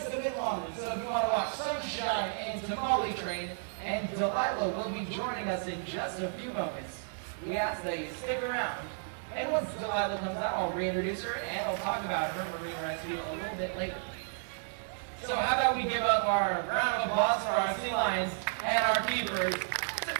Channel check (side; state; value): left; silent; digital silence